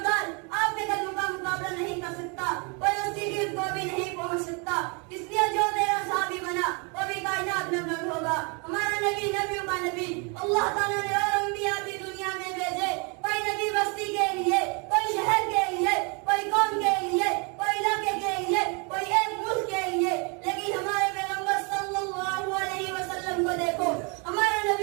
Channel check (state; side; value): quieter; left; 33.3 dB